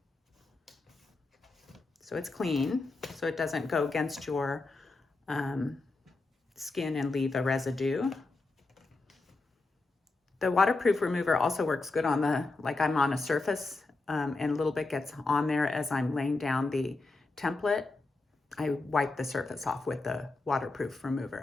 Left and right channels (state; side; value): quieter; right; 3.4 dB